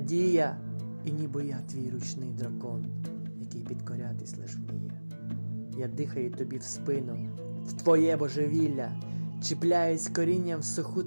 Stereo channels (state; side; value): inverted; both; correlation -1.00